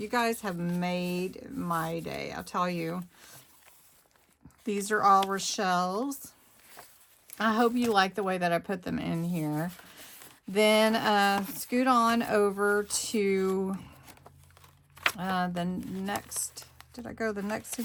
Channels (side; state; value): both; identical; correlation 1.00